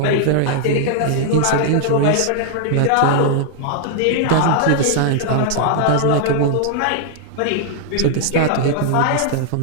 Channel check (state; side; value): different; both; correlation 0.00